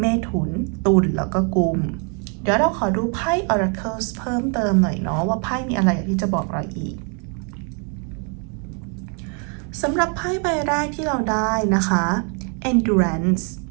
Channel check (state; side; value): quieter; left; 37.9 dB